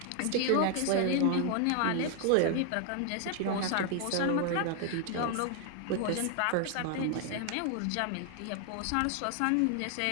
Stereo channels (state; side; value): different; both; correlation 0.00